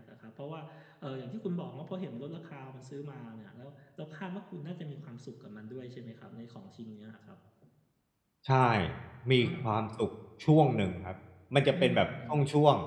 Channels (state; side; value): identical; both; correlation 1.00